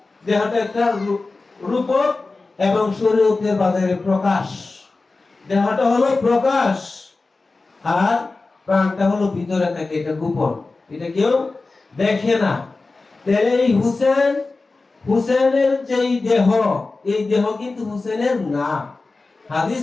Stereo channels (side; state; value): right; quieter; 3.6 dB